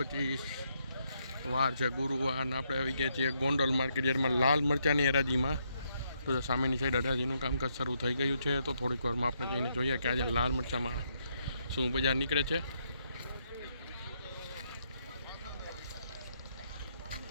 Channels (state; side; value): inverted; both; correlation -0.76